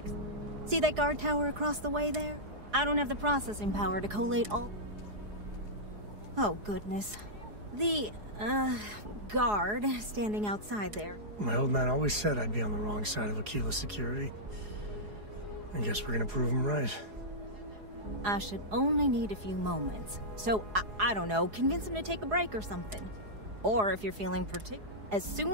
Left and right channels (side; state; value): left; late; 4.8 ms